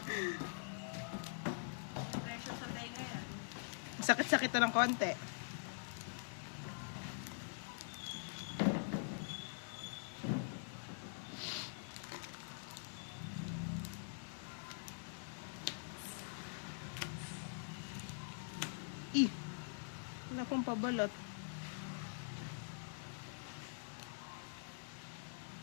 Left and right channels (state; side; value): silent; right; digital silence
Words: Pressure sa tenga yan. Sakit-sakit to ng konti. Wala pong pabalot.